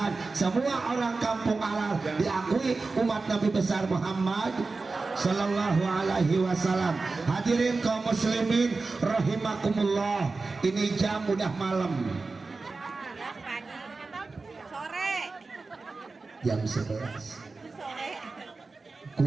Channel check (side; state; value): left; quieter; 3.9 dB